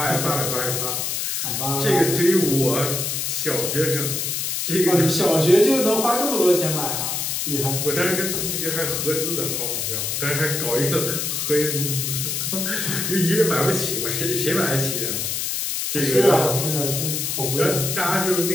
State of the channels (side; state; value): left; noise; hiss, 1 dB below the sound